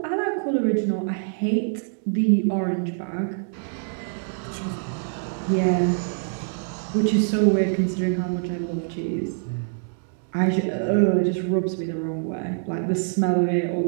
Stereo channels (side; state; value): left; silent; 62 dB below the other